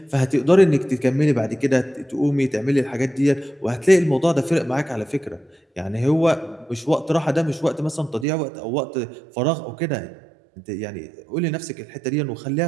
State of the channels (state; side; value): drops out; left; at 8.2 s